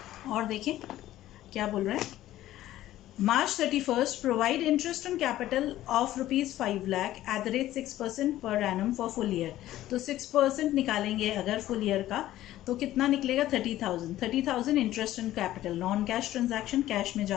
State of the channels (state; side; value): quieter; right; 14.2 dB